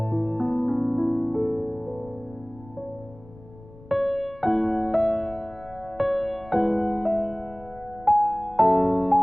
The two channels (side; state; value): left; noise; rumble, 21 dB below the sound